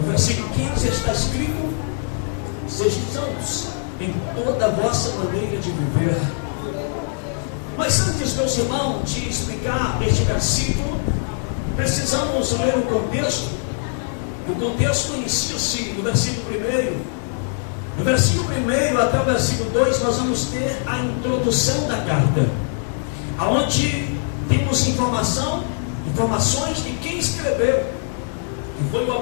versículo 15 está escrito: sejam santos em toda a vossa maneira de viver. Mas antes, meus irmãos, de explicar este versículo, precisamos ler o contexto. O contexto inicia-se no versículo 1. No versículo 1 até o versículo 2, nós vamos ter a introdução da carta, aonde temos informações de quem escreveu, que foi o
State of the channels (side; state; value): right; silent; 61 dB below the other